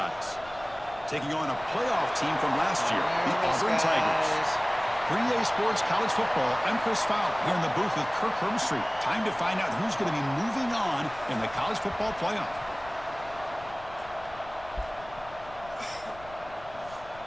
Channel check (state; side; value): noise; left; rumble, 20 dB below the sound